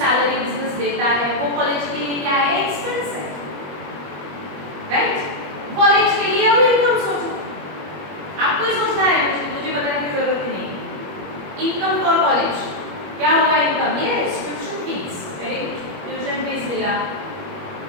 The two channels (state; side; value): late; left; 21 ms